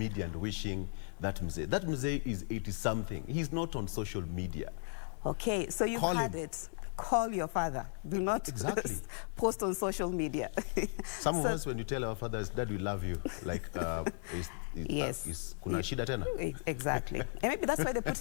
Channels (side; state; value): right; silent; 54 dB below the other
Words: and wishing that Mzee. That Mzee is 80-something. He's not on social media. Okay, so you've had it. Call your father. Do not post on social media. Some of us, when you tell our fathers, Dad, we love you, like, yes. Kuna shida tena? Exactly. And maybe that's why they put